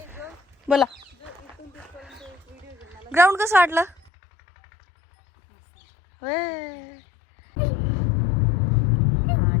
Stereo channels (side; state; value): right; drops out; at 4.1 s